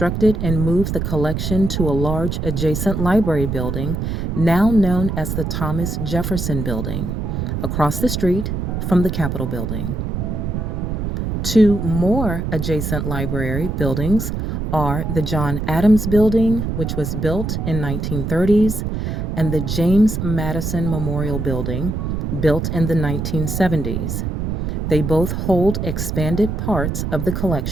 and moved the collection to a large adjacent library building, now known as the Thomas Jefferson Building, across the street from the Capitol Building. 2 more adjacent library buildings are the John Adams Building, which was built in 1930s, and the James Madison Memorial Building, built in the 1970s. They both hold expanded parts of the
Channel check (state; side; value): noise; right; rumble, 2 dB below the sound